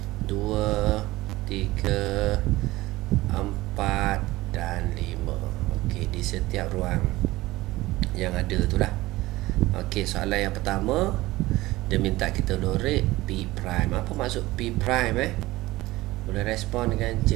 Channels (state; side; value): quieter; left; 18.5 dB